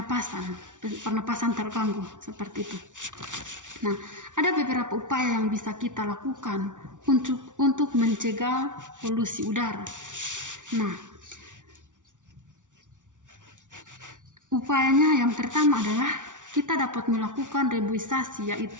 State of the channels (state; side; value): late; left; 0.87 ms